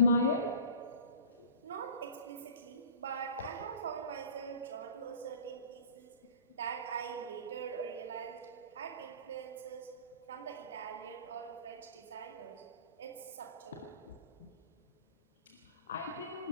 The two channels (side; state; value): both; inverted; correlation -0.42